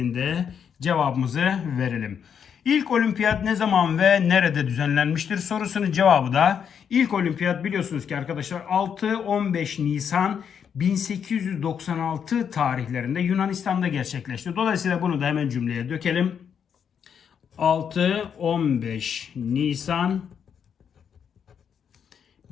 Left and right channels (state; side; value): quieter; right; 7.6 dB